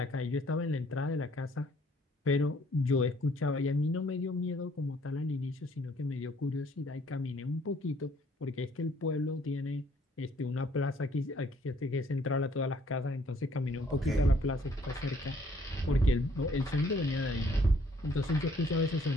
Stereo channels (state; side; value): normal; both; correlation 0.63